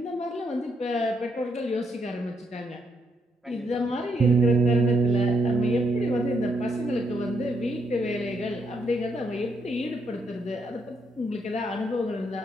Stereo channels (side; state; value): both; normal; correlation 0.77